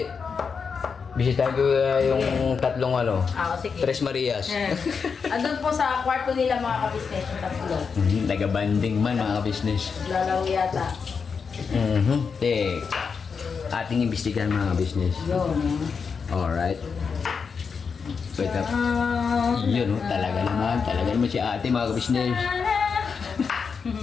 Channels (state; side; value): quieter; right; 5.7 dB